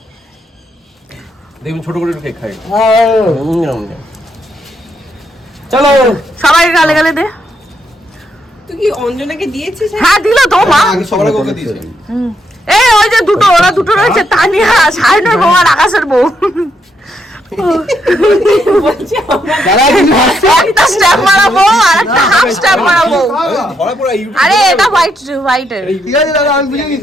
দেখুন ছোট করে কেক খাই। চলো সবাইকে গালে গালে দে। তুই কি অঞ্জনাকে দিয়েছিস? হ্যাঁ দিল তো মা। সবার ওকে দিয়েছে। এই ওই যে দুটো, ওরা দুটো রয়েছে, তানিয়া সাইনের বউ আর আকাশের বউ। একটা স্ট্যাম্প মারা বউ আর একটা হাফ স্ট্যাম্প মারা বউ। ধরা পড়া ইউটিউব। আরে এটা হোয়াইটের। ঠিক আছে দাদা, আমি বুঝে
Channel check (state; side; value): normal; both; correlation 0.77